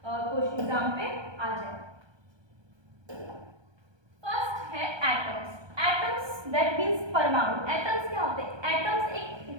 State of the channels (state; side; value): late; left; 1.2 ms